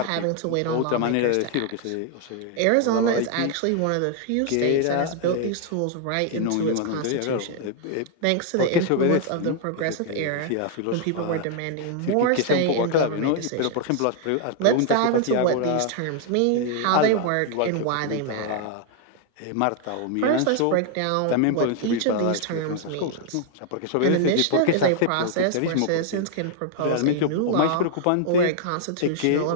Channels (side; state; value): both; different; correlation 0.00